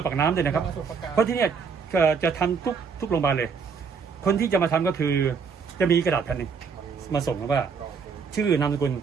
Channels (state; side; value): quieter; left; 5.7 dB